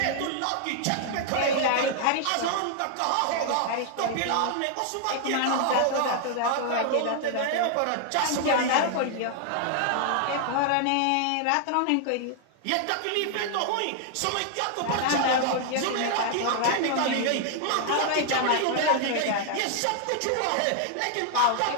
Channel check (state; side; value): different; both; correlation 0.00